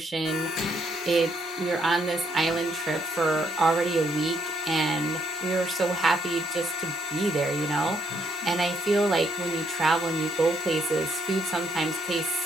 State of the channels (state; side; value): normal; both; correlation 0.73